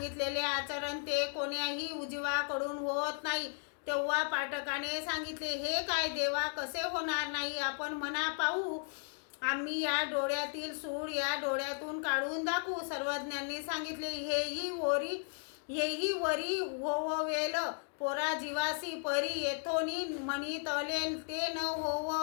आचरण ते कोण्याही उजवाकडून होत नाही. तेव्हा पाठकाने सांगितले, हे काय देवा, कसे होणार नाही? आपण म्हणा पाहू. आम्ही या डोळ्यातील सूळ या डोळ्यातून काढून दाखवू. सर्वज्ञांनी सांगितले, हेही वरी होववेल पोरा जीवासी परी येथोनी म्हणितले ते न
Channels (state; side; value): silent; right; 54 dB below the other